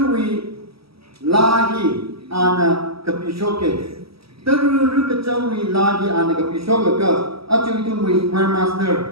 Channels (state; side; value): late; left; 0.76 ms